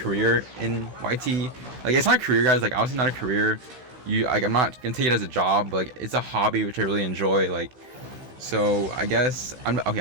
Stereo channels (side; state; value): left; late; 16 ms